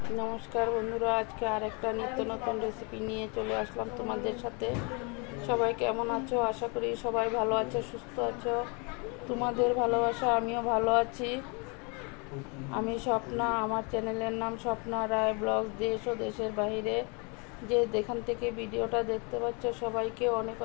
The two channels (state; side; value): quieter; right; 32.7 dB